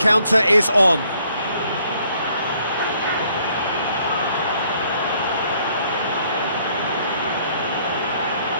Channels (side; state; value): both; inverted; correlation -0.65